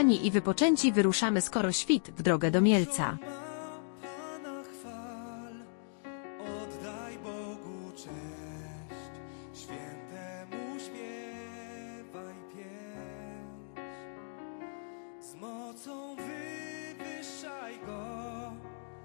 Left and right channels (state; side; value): silent; right; digital silence